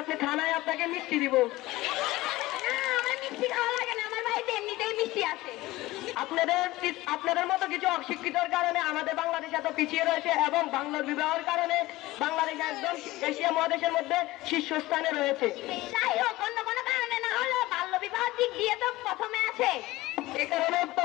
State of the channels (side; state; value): right; quieter; 18.5 dB